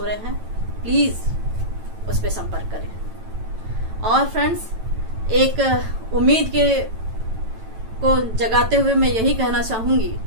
रहे हैं, प्लीज उस पर संपर्क करें। और फ्रेंड्स, एक उम्मीद को जगाते हुए मैं यही कहना चाहूंगी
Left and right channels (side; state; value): left; late; 9.0 ms